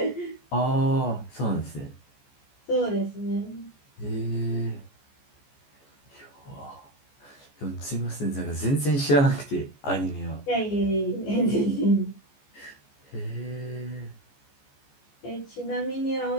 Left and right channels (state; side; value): late; right; 14 ms